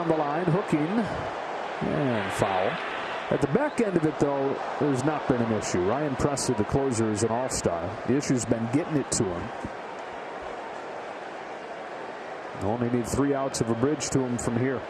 the line, hooking, and foul. At the back end of it, though, there's not been an issue. Ryan Presley, the closer, is an all-star. The issue's been getting it to him. Only need 3 outs of a bridge to him from here.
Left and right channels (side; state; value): both; identical; correlation 1.00